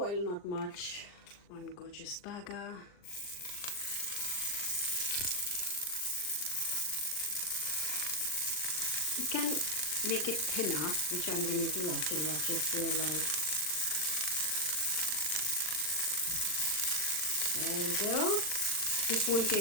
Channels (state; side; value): late; right; 39 ms